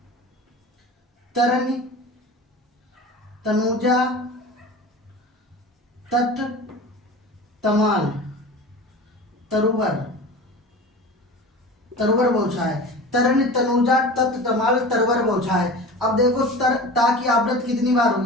तरनी, तनुजा, तट, तमाल, तरुवर, तरुवर बौछाए। तरन, तनुजा, तट, तमाल, तरुवर बौछाए। अब देखो ता की आवृत्ति कितनी बार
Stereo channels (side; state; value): both; normal; correlation 0.35